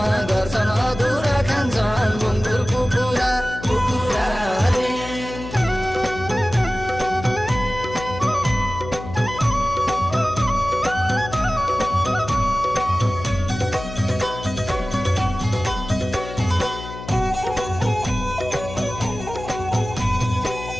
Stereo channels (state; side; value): noise; left; hum, 11 dB below the sound